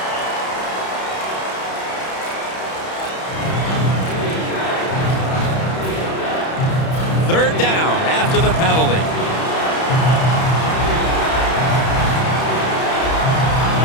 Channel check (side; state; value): right; late; 31 ms